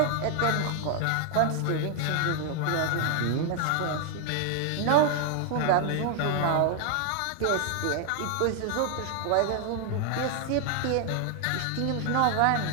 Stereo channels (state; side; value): different; both; correlation 0.00